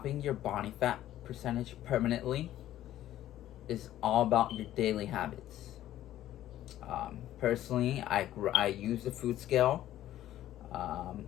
your body fat percentage permanently is all about your daily habits. Personally, I use the food scale.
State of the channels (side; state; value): right; quieter; 13.1 dB